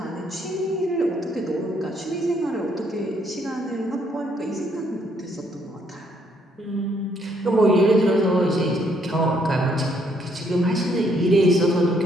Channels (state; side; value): normal; both; correlation 0.70